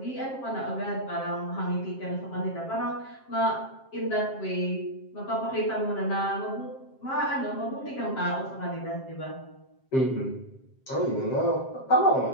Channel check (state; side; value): late; right; 7.5 ms